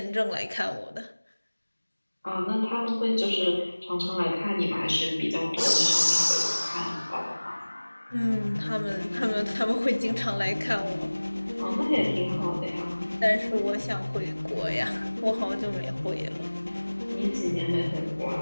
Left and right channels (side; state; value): both; inverted; correlation -1.00